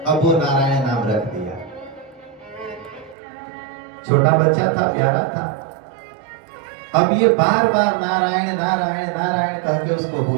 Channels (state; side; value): drops out; left; at 3.2 s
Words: अब वो नारायण नाम रख दिया। छोटा बच्चा था, प्यारा था। अब ये बार बार नारायण नारायण नारायण कह के उसको